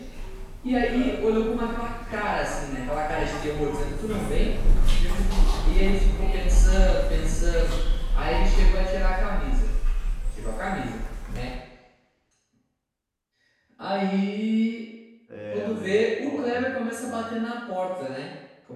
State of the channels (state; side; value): identical; both; correlation 1.00